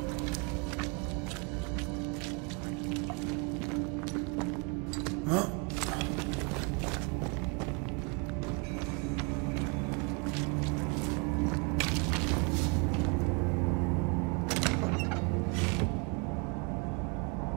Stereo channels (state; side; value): quieter; left; 34.1 dB